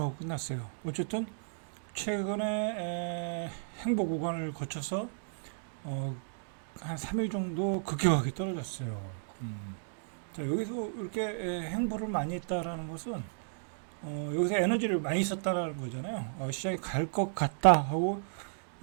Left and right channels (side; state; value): left; silent; digital silence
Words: 끝났어요. 어쨌든 최근에 행보 구간을 거쳐서 한 3일 정도 급격하게 떨어졌어요. 자, 여기서 이렇게 행보를 많이 했다라는 것은 여기서 에너지를 많이 썼다라는 거잖아요. 시장이 갈 것 같다 하고